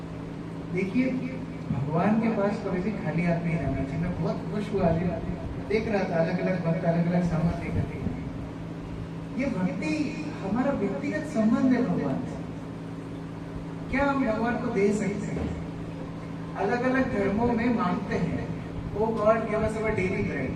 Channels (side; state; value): both; identical; correlation 1.00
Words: देखिए भगवान के पास कभी भी खाली हाथ नहीं जाना चाहिए। मैं बहुत खुश हुआ, देख रहा था अलग अलग भक्त अलग अलग सामान लेकर के। ये भक्ति हमारा व्यक्तिगत संबंध है भगवान से। क्या हम भगवान को दे सकते हैं? अलग अलग धर्मों में मांगते हैं, O God give us our daily bread.